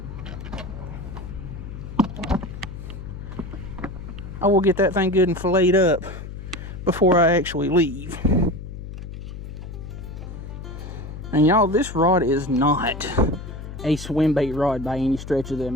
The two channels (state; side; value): noise; left; hum, 10 dB below the sound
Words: I will get that thing good and filleted up before I actually leave. And y'all, this rod is not a swim bait rod by any stretch of the